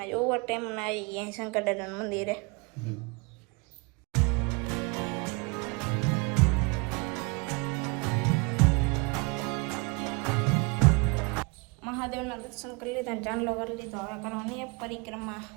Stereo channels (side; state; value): left; quieter; 29.1 dB